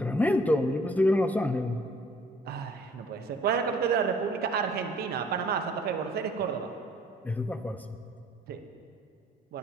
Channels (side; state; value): both; normal; correlation 0.57